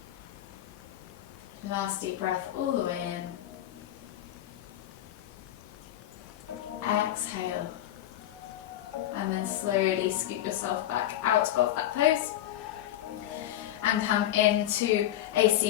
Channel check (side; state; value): right; quieter; 12.8 dB